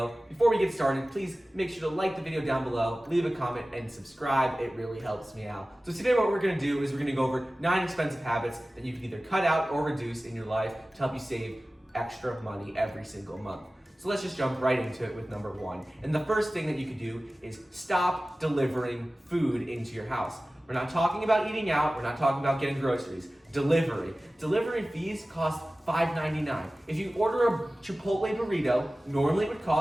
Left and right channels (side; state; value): both; normal; correlation 0.97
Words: Before we get started, please make sure to like the video down below, leave a comment, and subscribe, it really helps me out. So today what we're gonna do is we're gonna go over 9 expensive habits that you can either cut out or reduce in your life to help you save extra money every single month. So let's just jump right into it with number 1. And the first thing that you could do is stop delivering food into your house. We're not talking about eating out, we're not talking about getting groceries. Delivery. Delivery fees cost $5.99. If you order a Chipotle burrito, normally it would